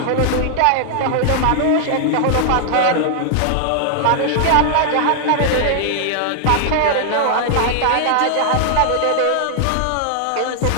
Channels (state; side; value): different; both; correlation -0.01